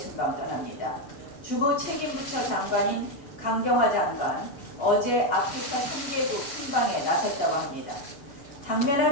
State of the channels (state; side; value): late; right; 6.9 ms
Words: 떠납니다. 주무 책임부처 장관인 강경화 장관 어제 아프리카 3개국 순방에 나섰다고 합니다.